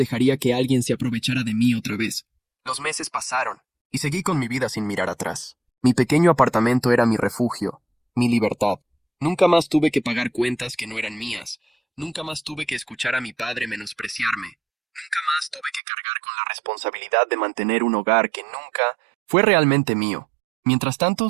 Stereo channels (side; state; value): left; drops out; at 15.8 s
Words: que alguien se aprovechara de mí otra vez. Los meses pasaron, y seguí con mi vida sin mirar atrás. Mi pequeño apartamento era mi refugio, mi libertad. Nunca más tuve que pagar cuentas que no eran mías. Nunca más tuve que escuchar a mi padre menospreciarme. Nunca más tuve que cargar con la responsabilidad de mantener un hogar que nunca fue realmente mío. Mientras tanto,